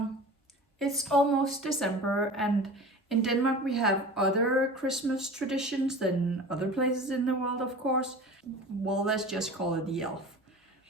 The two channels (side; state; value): both; normal; correlation 0.37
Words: it's almost December, and in Denmark we have other Christmas traditions than other places in the world, of course. Well, let's just call it the elf.